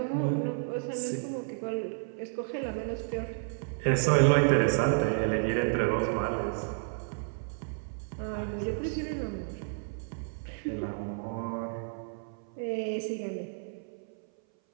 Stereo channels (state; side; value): silent; left; 57 dB below the other